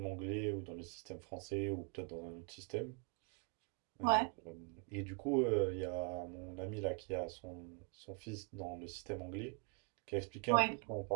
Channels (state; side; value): quieter; left; 36.7 dB